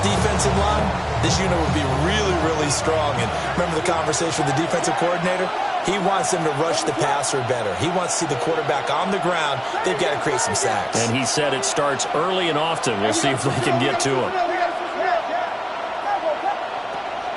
in line, this unit would be really, really strong. And remember the conversation with the defensive coordinator? He wants them to rush the passer better. He wants to see the quarterback on the ground. They've got to create some sacks. And he said it starts early and often. We'll see if they can get to him.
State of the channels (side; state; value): both; identical; correlation 1.00